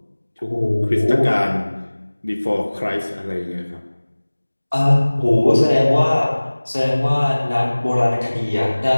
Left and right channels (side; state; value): both; inverted; correlation -1.00